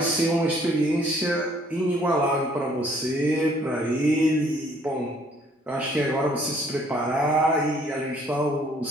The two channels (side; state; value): both; normal; correlation 0.61